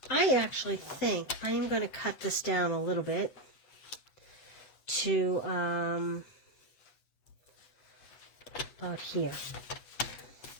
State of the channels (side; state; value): right; late; 8.1 ms